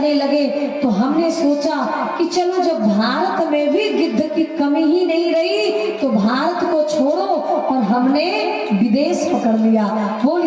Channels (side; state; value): both; identical; correlation 1.00